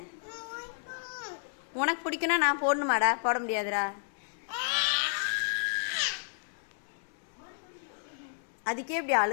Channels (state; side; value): silent; right; 57 dB below the other